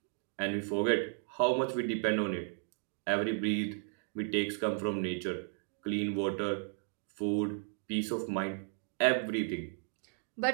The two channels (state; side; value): silent; left; 55 dB below the other